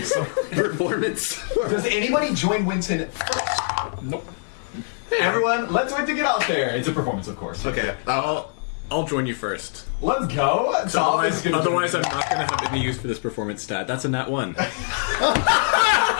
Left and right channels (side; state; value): right; silent; digital silence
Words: some Performance. Does anybody join Winton? Nope. Everyone, let's Winton get out there. It's a performance, of course. Okay. I'll join you first. Let's go. Tom is gonna Otherwise, I'm not going to have any use for this performance stat. That's a nat 1.